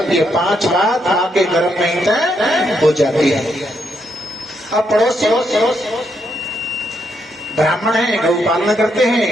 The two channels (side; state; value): both; normal; correlation 0.77